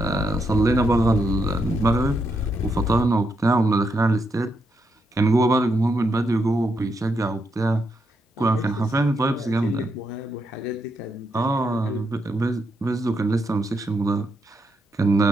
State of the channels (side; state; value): both; normal; correlation 0.81